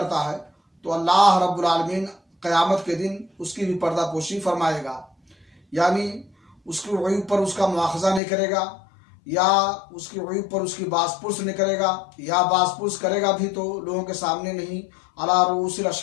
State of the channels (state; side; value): drops out; right; at 8.2 s